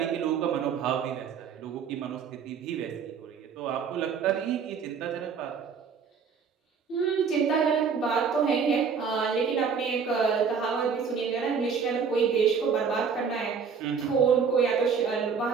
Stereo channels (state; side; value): quieter; left; 6.2 dB